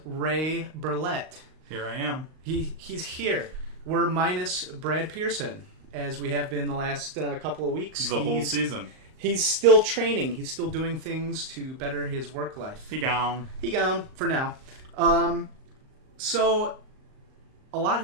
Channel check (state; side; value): late; left; 38 ms